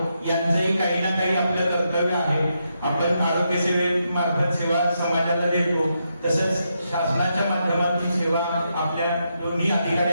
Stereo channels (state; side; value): inverted; both; correlation -0.82